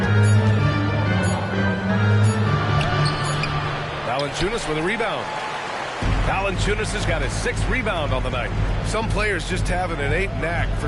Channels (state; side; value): identical; both; correlation 1.00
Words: Valanciunas with a rebound. Valanciunas has got his 6th rebound on the night. Some players just have an innate knack for